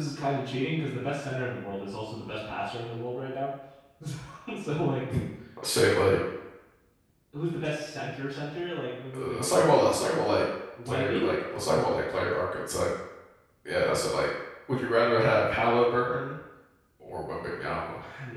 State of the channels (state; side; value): identical; both; correlation 1.00